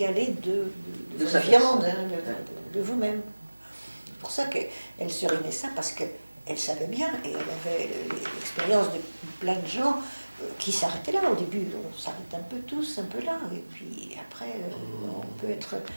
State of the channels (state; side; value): inverted; both; correlation -1.00